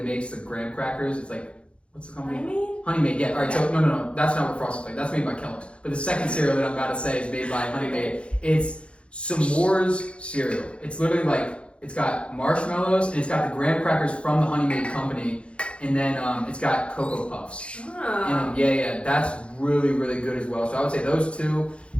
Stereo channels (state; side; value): late; right; 0.059 ms